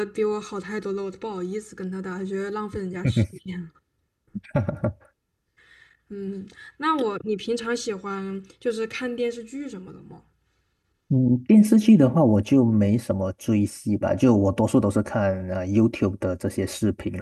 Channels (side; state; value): both; identical; correlation 1.00